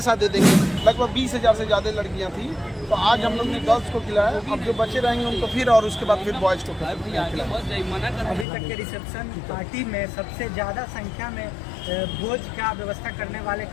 दे देंगे। लगभग 20,000 से ज़्यादा लड़कियाँ थी, तो आज हम लोग ने गर्ल्स को खिलाया, अब जो बच्चे रहेंगे उनको फिर, और उसके बाद फिर बॉयज़ को खिलाया। अभी तक के रिसेप्शन पार्टी में सबसे ज़्यादा संख्या में भोज का व्यवस्था करने वाले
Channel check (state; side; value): drops out; right; at 8.5 s